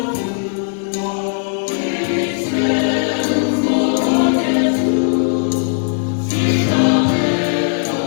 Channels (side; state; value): right; silent; digital silence